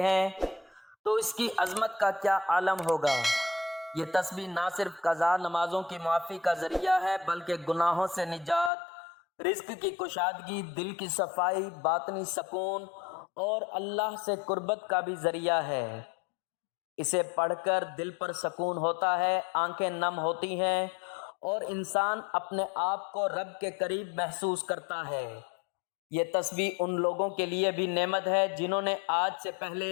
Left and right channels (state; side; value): drops out; right; at 8.7 s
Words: ہیں تو اس کی عظمت کا کیا عالم ہوگا۔ یہ تسبیح نہ صرف قضا نمازوں کی معافی کا ذریعہ ہے بلکہ گناہوں سے نجات، رزق کی کشادگی، دل کی صفائی، باطنی سکون اور اللہ سے قربت کا بھی ذریعہ ہے۔ اسے پڑھ کر دل پر سکون ہوتا ہے، آنکھیں نم ہوتی ہیں اور انسان اپنے آپ کو رب کے قریب محسوس کرتا ہے۔ یہ تسبیح ان لوگوں کے لیے بھی نعمت ہے جنہوں نے آج سے پہلے